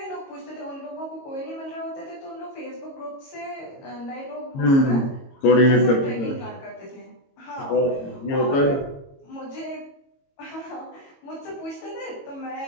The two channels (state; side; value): late; right; 22 ms